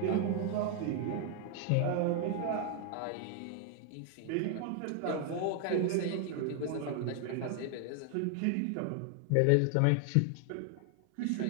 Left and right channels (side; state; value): both; different; correlation 0.00